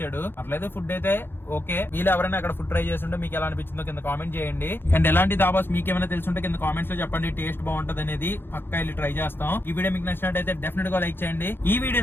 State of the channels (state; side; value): late; right; 0.10 ms